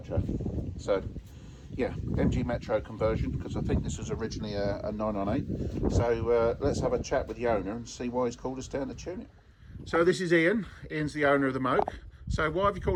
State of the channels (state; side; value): identical; both; correlation 1.00